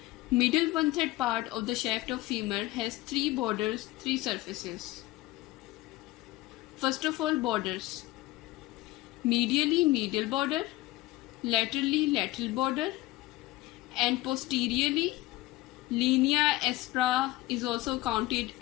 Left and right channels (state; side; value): quieter; right; 18.5 dB